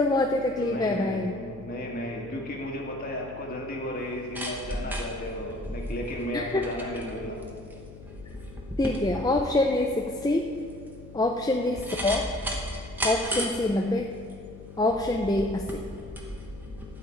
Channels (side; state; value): left; noise; hum, 16 dB below the sound